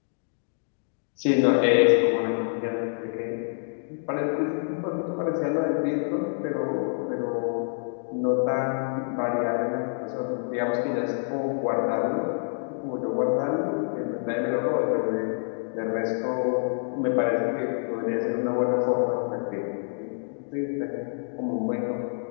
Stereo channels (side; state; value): right; silent; digital silence